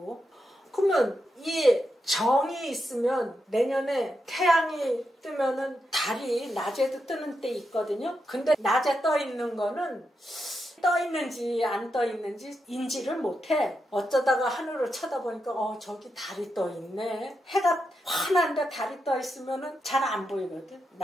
그러면 이 정이 있으면 내년에 태양이 뜨면은 달이 낮에도 뜨는 때 있거든요. 근데 낮에 떠 있는 거는 떠 있는지 안 떠 있는지 인지를 못해. 어쩌다가 하늘을 쳐다보니까 저기 달이 떠 있네. 해가 환한데 달이 떠 있으면은 잘 안 보이거든.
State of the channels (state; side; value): normal; both; correlation 0.86